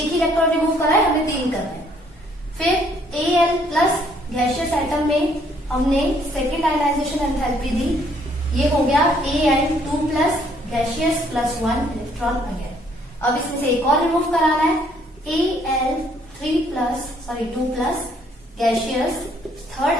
ही इलेक्ट्रॉन रिमूव करा है, हमने 3 करने हैं। फिर Al+ गैशियस आइटम में हमने सेकेंड आयनाइजेशन एंथैल्पी दी, ये हो गया Al2+ gaseous plus 1 electron again. अब इसमें से एक और रिमूव कराना है, Al2+ gaseous, third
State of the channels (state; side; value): normal; both; correlation 0.65